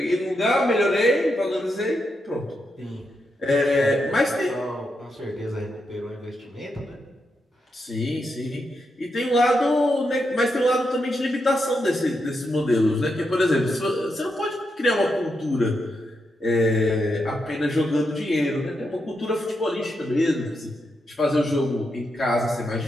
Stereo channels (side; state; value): both; normal; correlation 0.84